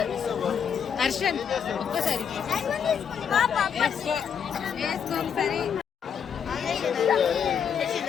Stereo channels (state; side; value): quieter; right; 7.5 dB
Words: హర్షన్ ఒక్కసారి వేసుకోండి సరే.